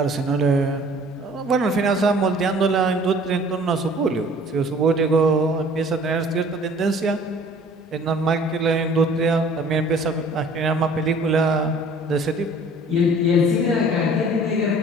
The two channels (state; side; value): normal; both; correlation 0.51